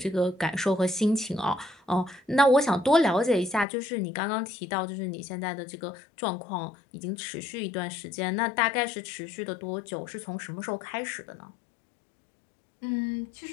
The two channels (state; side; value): drops out; right; at 3.7 s